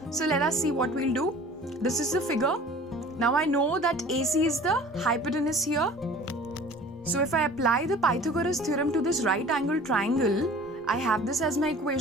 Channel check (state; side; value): normal; both; correlation 0.46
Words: So let us see what we'll do. This is the figure. Now I know that AC is the hypotenuse here. So if I apply the Pythagoras theorem to this right angle triangle, I have this as my